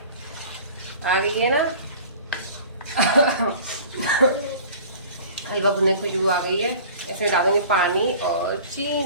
आ गई है ना हलवा भुनने की खुशबू आ गई है। इसमें डालेंगे पानी और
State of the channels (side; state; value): both; inverted; correlation -0.44